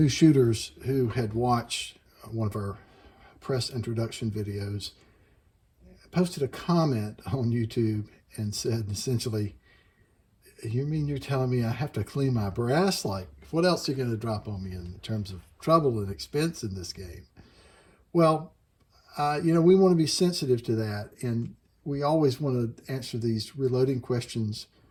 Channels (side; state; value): both; identical; correlation 1.00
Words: shooters who had watched one of our press introduction videos posted a comment on YouTube and said essentially, "You mean you're telling me I have to clean my brass? Like, what else are you going to drop on me in terms of trouble and expense in this game?" Well, we want to be sensitive to that, and we always want to answer these reloading questions